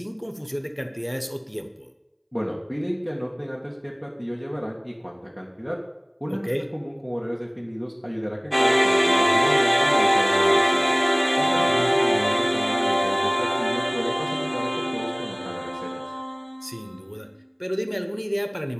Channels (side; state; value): both; identical; correlation 1.00